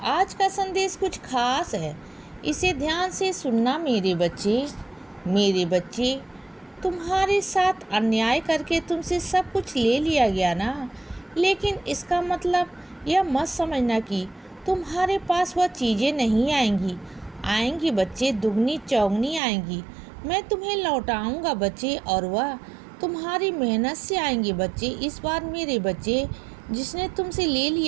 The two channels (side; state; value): left; drops out; at 19.4 s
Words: का संदेश कुछ खास है। इसे ध्यान से सुनना मेरे बच्चे। मेरे बच्चे, तुम्हारे साथ अन्याय करके तुमसे सब कुछ ले लिया गया ना, लेकिन इसका मतलब यह मत समझना कि तुम्हारे पास वह चीज़ें नहीं आएंगी। आएंगी बच्चे, दुगनी चौगनी आएंगी। मैं तुम्हें लौटाऊंगा बच्चे, और वह तुम्हारी मेहनत से आएंगे बच्चे। इस बार मेरे बच्चे, जिसने तुमसे ले